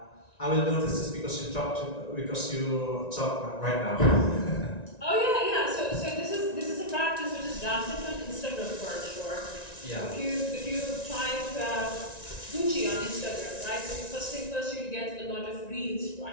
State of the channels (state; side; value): late; right; 1.9 ms